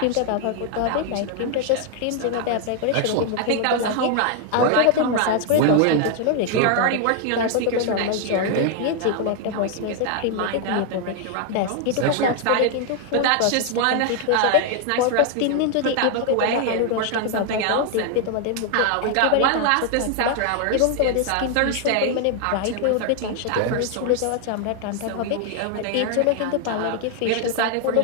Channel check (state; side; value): different; both; correlation 0.00